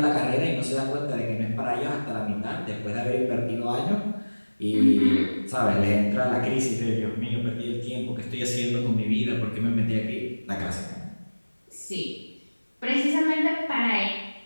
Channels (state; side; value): inverted; both; correlation -1.00